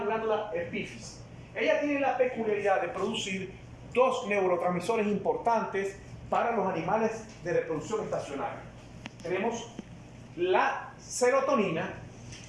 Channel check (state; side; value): identical; both; correlation 1.00